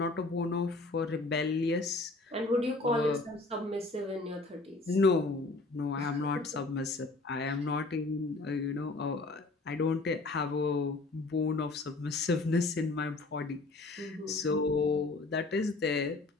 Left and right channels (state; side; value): quieter; right; 3.3 dB